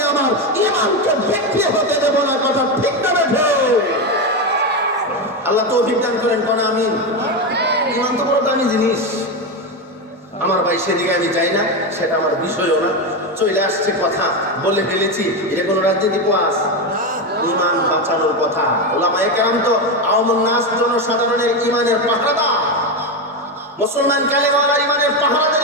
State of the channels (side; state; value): both; normal; correlation 0.13